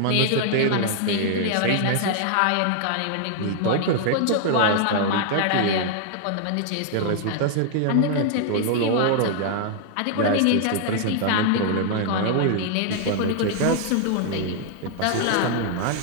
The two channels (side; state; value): both; different; correlation 0.00